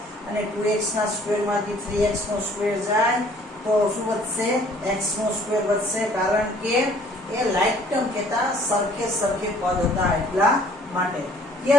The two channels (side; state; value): both; normal; correlation 0.57